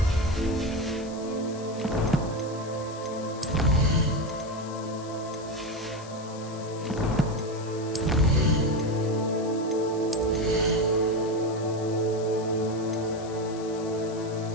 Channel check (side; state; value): left; noise; hiss, 18 dB below the sound